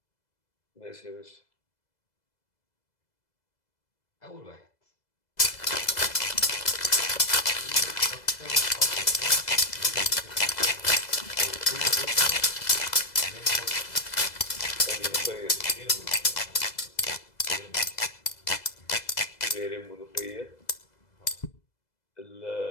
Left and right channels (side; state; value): right; late; 2.0 ms